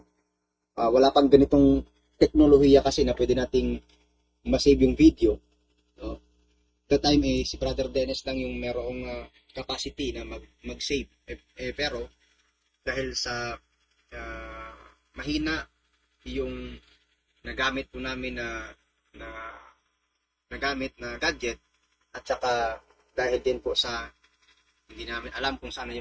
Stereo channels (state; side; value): identical; both; correlation 1.00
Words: wala pang ganitong teknolohiya kasi na pwede nating masave yung video. That time si Brother Dennis lang yung merong capacity na mag-save. Pero dahil sa mahina yung nagamit po namin na gadget, at saka dahil din po sa hindi namin alam kung saan